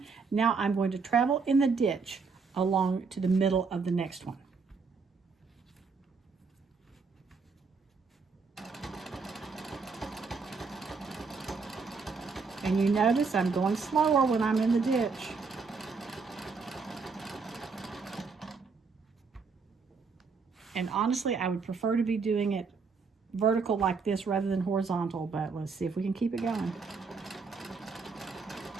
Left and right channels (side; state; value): left; quieter; 4.8 dB